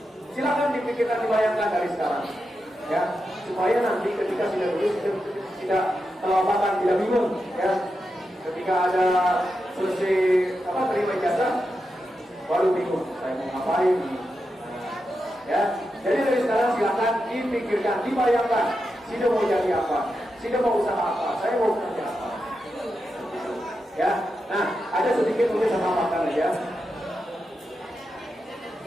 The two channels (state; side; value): normal; both; correlation 0.88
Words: Silakan dipikirkan, dibayangkan dari sekarang, ya, supaya nanti ketika sudah lulus tidak kelewatan, tidak bingung, ya. Ketika ada selesai terima ijazah, baru bingung, saya mau ngapain? Ya, jadi dari sekarang silakan dipikirkan, dibayangkan, sudah mau jadi apa? Sudah mau usaha apa? Saya mau kerja apa? Ya, nah, ada sedikit mungkin sama makan aja.